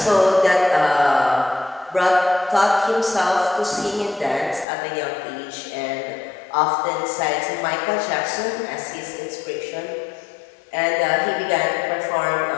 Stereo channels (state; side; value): drops out; right; at 4.7 s